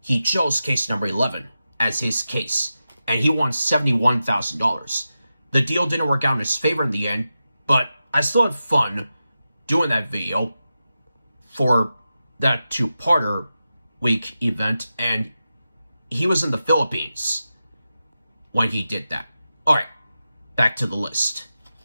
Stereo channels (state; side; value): inverted; both; correlation -0.91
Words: he chose case number 11 as his case, and he won $71,000. The deal didn't work out in his favor in the end, but I still had fun doing that video for that 2-parter week event, and he was in the Philippines when he did that. Alright, back to the list.